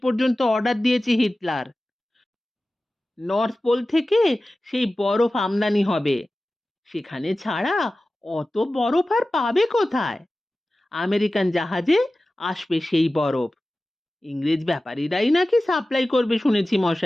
পর্যন্ত অর্ডার দিয়েছে হিটলার। নর্থ পোল থেকে সেই বরফ আমদানি হবে। সেখানে ছাড়া অত বরফ আর পাবে কোথায়? আমেরিকান জাহাজে আসবে সেই বরফ। ইংরেজ ব্যাপারীরাই নাকি সাপ্লাই করবে শুনেছি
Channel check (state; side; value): normal; both; correlation 0.96